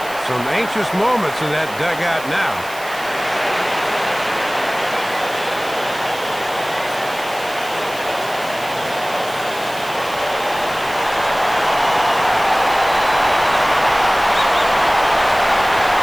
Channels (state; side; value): noise; right; hiss, 16 dB below the sound